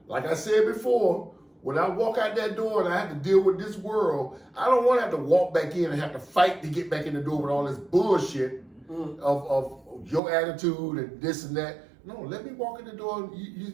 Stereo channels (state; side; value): drops out; left; at 10.2 s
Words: Like I said before, when I walk out that door and I have to deal with this world, I don't want to have to walk back in and have to fight to get back in the door with all this bullshit of your attitude and this and that. No, let me walk in the door and